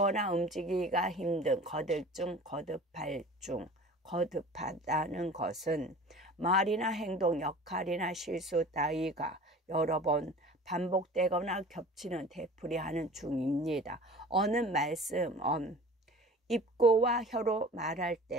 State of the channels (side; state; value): both; normal; correlation 0.42